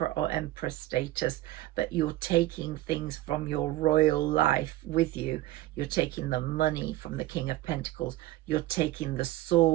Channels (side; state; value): left; quieter; 16.2 dB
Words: or Empress status, but you're taking things from your royal life with you. You're taking the money from the King of Pentacles. You're taking the